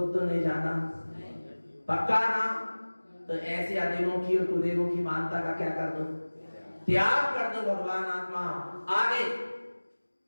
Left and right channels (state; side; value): inverted; both; correlation -1.00